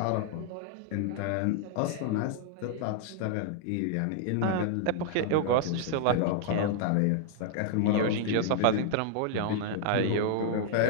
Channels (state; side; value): different; both; correlation -0.01